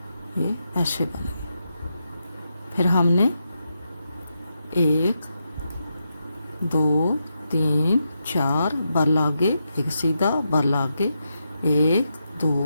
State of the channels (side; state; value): both; inverted; correlation -0.85